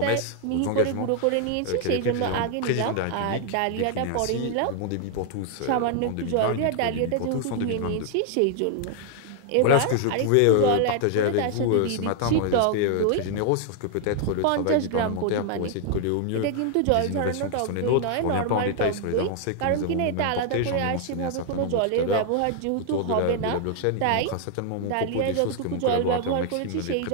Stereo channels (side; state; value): both; different; correlation 0.00